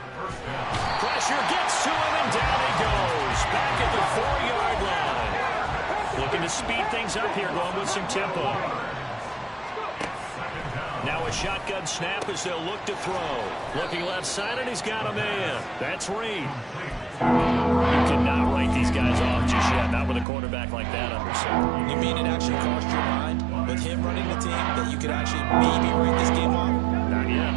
Pressure gets to him, and down he goes. Back at the 4-yard line. Looking to speed things up here, going with some tempo. Now a shotgun snap as they'll look to throw. Looking left side, and he's got a man. That's Reed. You cannot write these guys off just yet, not with a quarterback like that under center. You mean it actually crossed your mind with him running the team that you could actually maybe write this game off? Not yet.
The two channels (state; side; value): drops out; left; at 20.2 s